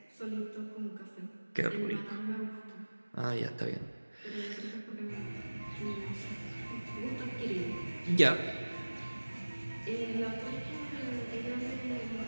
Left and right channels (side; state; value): both; inverted; correlation -1.00